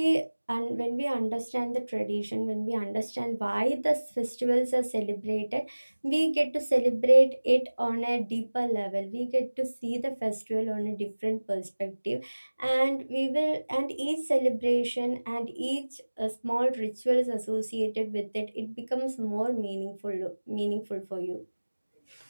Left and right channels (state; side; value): inverted; both; correlation -1.00